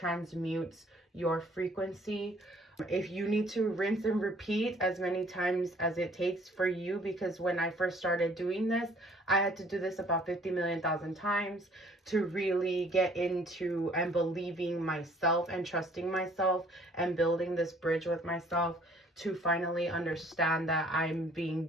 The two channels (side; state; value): both; normal; correlation 0.57